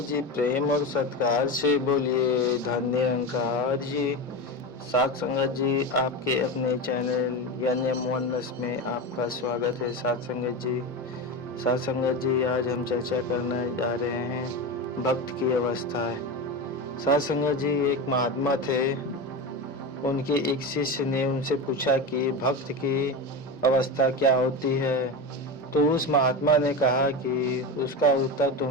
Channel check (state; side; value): normal; both; correlation 0.21